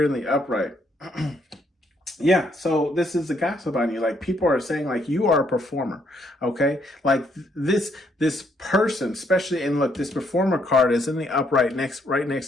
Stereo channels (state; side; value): normal; both; correlation 0.72